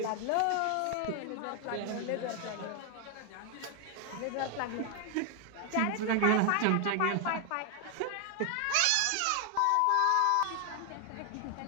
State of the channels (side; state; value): both; different; correlation 0.00